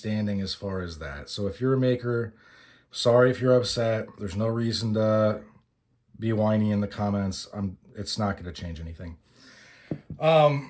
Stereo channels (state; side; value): identical; both; correlation 1.00